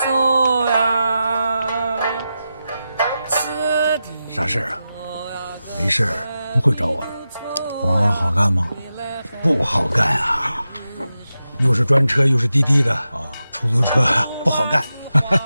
呀，吃的。啥事儿啊？没事儿，不会找我的。活儿好干吗？不好干啊，又是专车又是滴滴的啊，出租车不好干。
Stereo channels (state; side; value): inverted; both; correlation -0.91